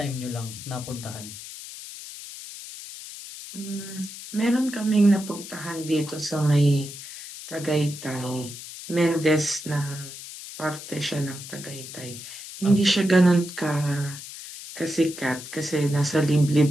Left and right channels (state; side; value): noise; left; hiss, 12 dB below the sound